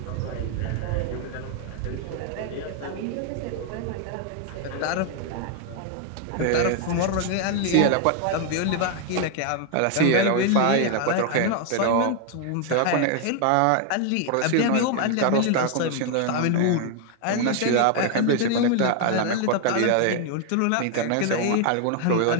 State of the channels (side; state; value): both; different; correlation 0.00